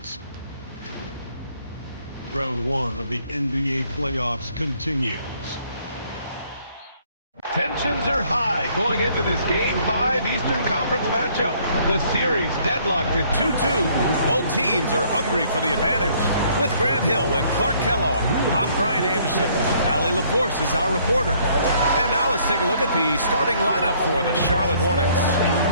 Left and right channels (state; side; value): inverted; both; correlation -0.63